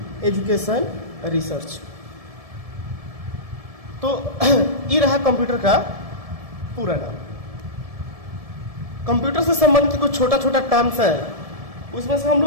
education research. तो ये रहा कंप्यूटर का पूरा नाम। कंप्यूटर से संबंधित कुछ छोटा छोटा टर्म्स है, उसमें से हम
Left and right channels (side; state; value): left; late; 1.7 ms